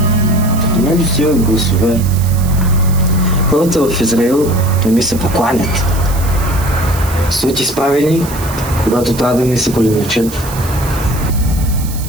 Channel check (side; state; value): right; noise; hiss, 13 dB below the sound